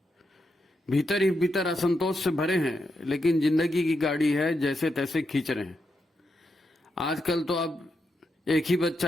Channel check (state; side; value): normal; both; correlation 0.84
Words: भीतर ही भीतर असंतोष से भरे हैं, लेकिन जिंदगी की गाड़ी है जैसे तैसे खींच रहे हैं। आजकल तो अब एक ही बच्चा